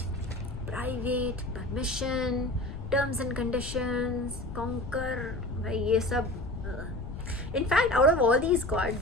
private, permission, terms and conditions, conquer, ये सब. In fact, out of all these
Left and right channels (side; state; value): left; noise; rumble, 9 dB below the sound